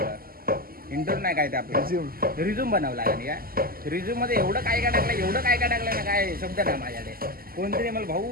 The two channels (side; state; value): left; late; 0.42 ms